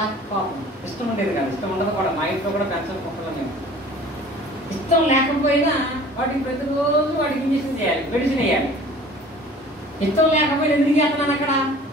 కోపం, ఇష్టం ఉండేది కాదు. ఇష్టం ఉండదు కూడా, మా ఇంట్లో కూడా పెంచని కుక్కలు మేము. ఇష్టం లేకపోయినా వాటికి ప్రతిరోజు వాటికి ఇంజక్షన్ చేయాలి, మెడిసిన్ వేయాలి. ఇష్టం లేకపోయినా ఎందుకు చేస్తున్నాను అక్కడ?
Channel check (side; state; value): both; normal; correlation 0.47